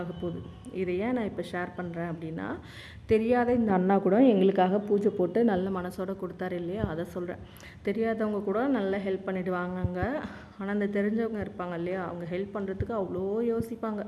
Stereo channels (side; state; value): both; identical; correlation 1.00